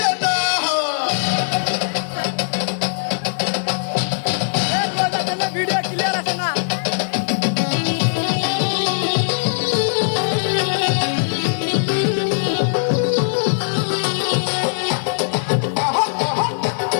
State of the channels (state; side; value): silent; right; digital silence